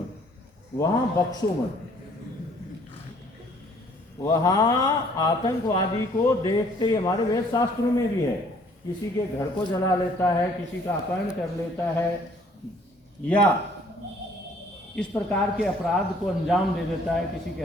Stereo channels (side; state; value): both; normal; correlation 0.59